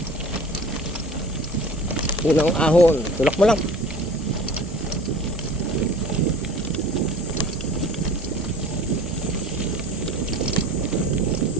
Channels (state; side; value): normal; both; correlation 0.43